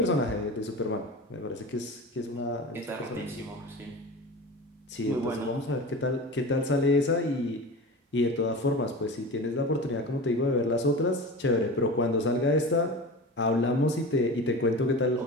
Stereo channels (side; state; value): both; normal; correlation 0.31